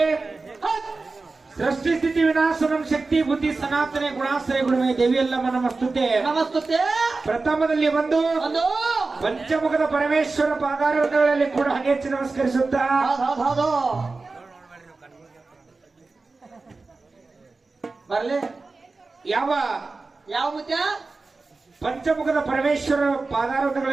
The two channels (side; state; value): left; quieter; 3.8 dB